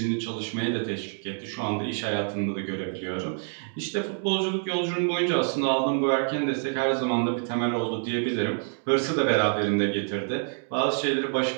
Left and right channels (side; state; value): left; silent; 60 dB below the other